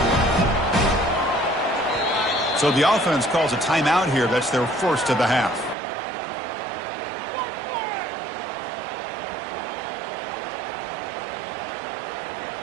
So the offense calls a timeout here. That's their first of the half.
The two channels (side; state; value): left; drops out; at 5.8 s